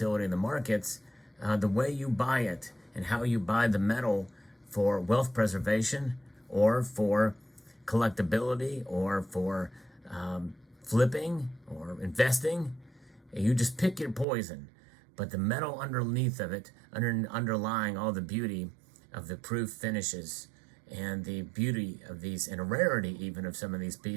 in the markets. The way you buy it and how you buy the metal for wealth preservation or for collectability or for flipping or investing, you just pick your poison. But the metal underneath of it, underlying all the beauty of the proof finishes and the beauty of these, and a rarity even of some of these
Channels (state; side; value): drops out; left; at 14.2 s